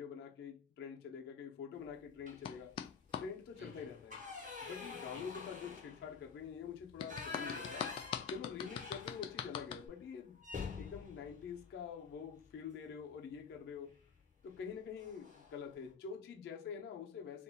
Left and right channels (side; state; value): right; quieter; 6.3 dB